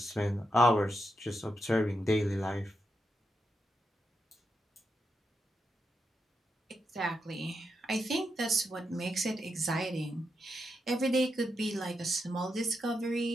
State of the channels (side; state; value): both; normal; correlation 0.84